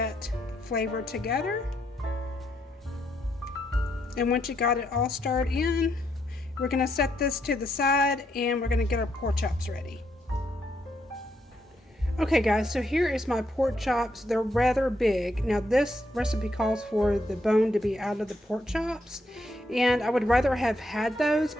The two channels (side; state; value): both; normal; correlation 0.77